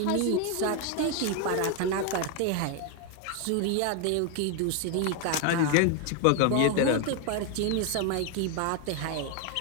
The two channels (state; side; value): different; both; correlation 0.01